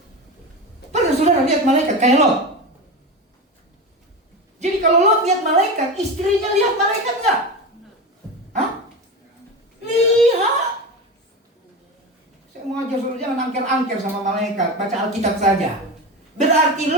Pernah saudara lihat malaikat kayak Lot? Jadi kalau Lot lihat malaikat, istrinya lihat malaikat enggak? Hah? Lihat. Saya mau ajar saudara jangan angker-angker sama malaikat, baca Alkitab saja. Berarti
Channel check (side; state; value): both; normal; correlation 0.23